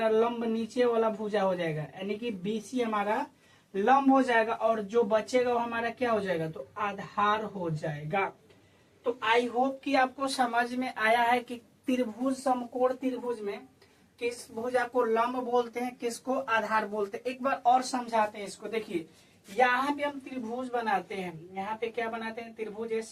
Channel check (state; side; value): identical; both; correlation 1.00